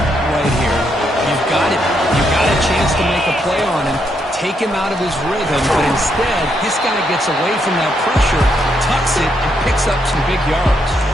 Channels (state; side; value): normal; both; correlation 0.77